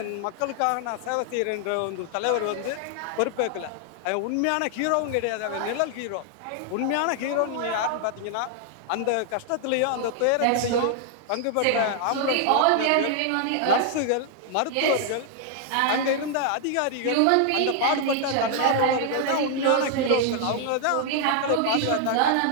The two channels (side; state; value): both; different; correlation 0.00